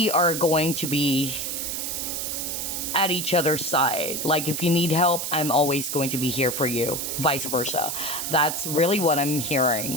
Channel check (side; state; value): right; noise; hiss, 3 dB below the sound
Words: are going to be at each other's side. Like if you need help, I'm always going to be here for you, vice versa. That's really what I'm